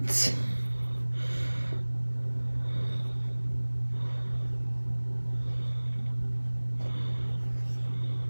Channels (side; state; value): both; inverted; correlation -1.00